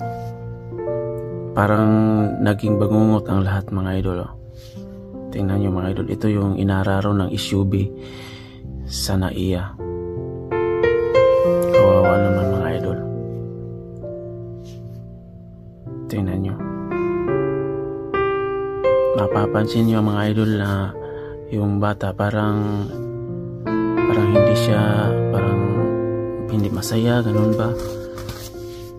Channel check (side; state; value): both; identical; correlation 1.00